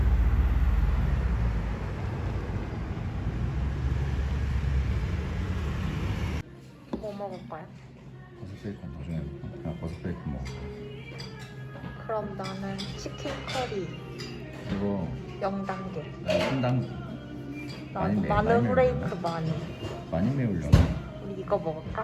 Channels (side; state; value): both; identical; correlation 1.00